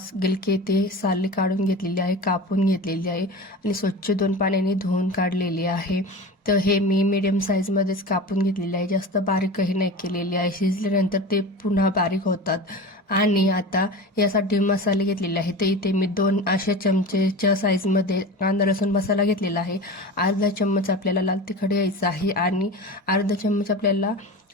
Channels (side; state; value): both; normal; correlation 0.31